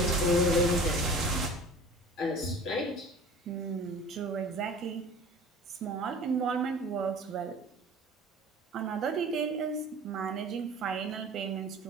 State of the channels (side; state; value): both; normal; correlation 0.42